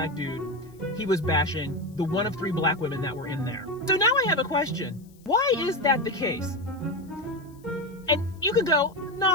dude, he was bashing the one of 3 black women that were in there. So now I have a question. Why is that the case? And you can go,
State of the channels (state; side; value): noise; left; hiss, 30 dB below the sound